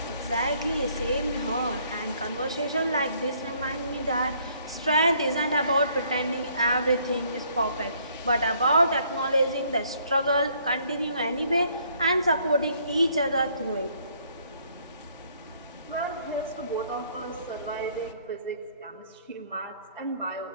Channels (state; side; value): inverted; both; correlation -0.65